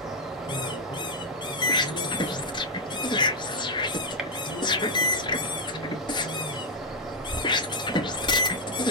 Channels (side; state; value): both; normal; correlation -0.01